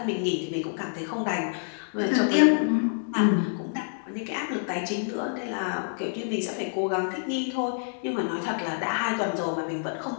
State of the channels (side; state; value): right; silent; digital silence